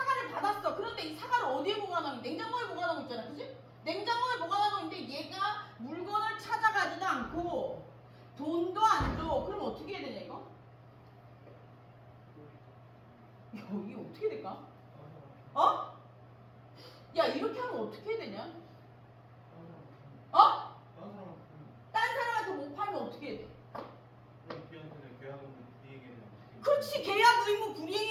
받았어. 그런데 이 사과를 어디에 보관하고? 냉장고에 보관하고 있잖아. 그지? 냉장고에 보관하고 있는데 얘가 물건을 찾아가지도 않고 돈도 안 줘. 그럼 어떻게 해야 되냐 이거? 이게 어떻게 될까? 야, 이렇게 하면 어떻게 해야 되냐? 딴 사람한테 못 팔면 어떻게 해야 돼? 그렇지. 계약 의무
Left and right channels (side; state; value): both; identical; correlation 1.00